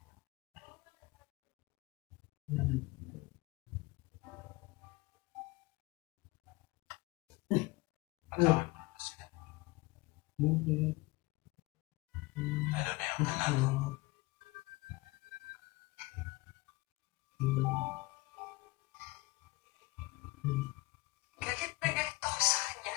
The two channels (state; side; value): quieter; right; 21.4 dB